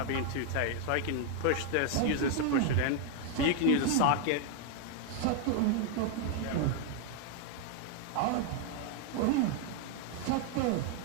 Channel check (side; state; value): both; different; correlation 0.00